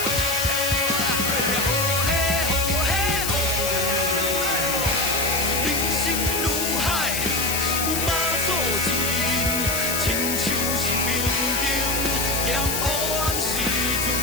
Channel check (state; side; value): noise; left; hiss, 1 dB below the sound